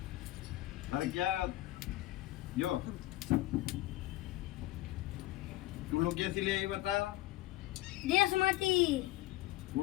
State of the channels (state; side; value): quieter; right; 16.9 dB